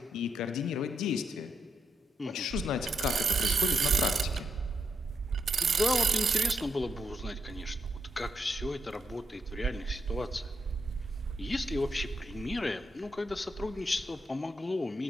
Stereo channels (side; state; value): both; normal; correlation 0.81